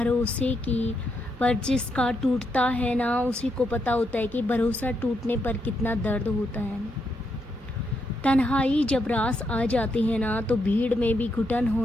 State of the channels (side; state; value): both; normal; correlation 0.80